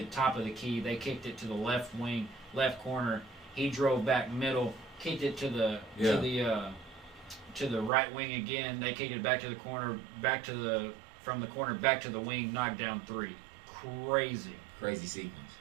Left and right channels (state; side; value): drops out; left; at 7.9 s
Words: top of the key. They kicked it to the left wing, left corner. He drove back middle. Kicked it to the right wing again. They kicked it back to the corner. From the corner back to the wing. Knocked down 3. Crazy sequence.